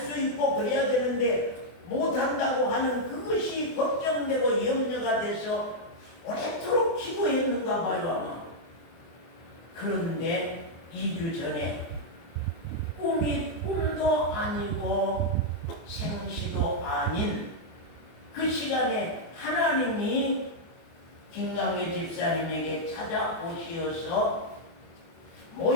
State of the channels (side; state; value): right; late; 24 ms